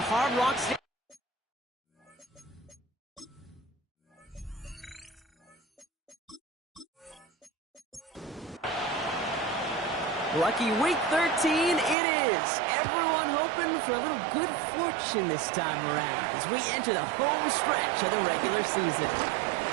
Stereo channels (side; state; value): left; drops out; at 12.0 s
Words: Rock Stadium. Lucky week 13 it is. Everyone hoping for a little good fortune this time around as we enter the home stretch of the regular season.